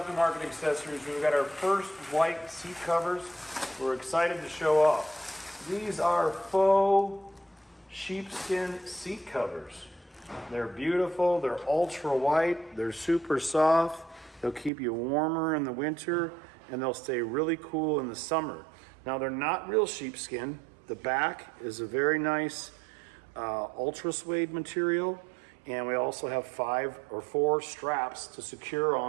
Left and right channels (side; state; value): left; drops out; at 14.7 s